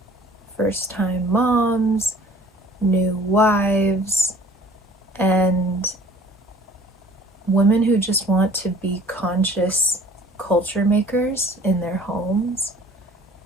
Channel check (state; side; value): normal; both; correlation 0.51